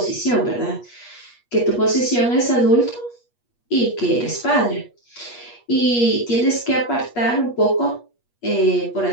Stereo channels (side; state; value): right; late; 8.4 ms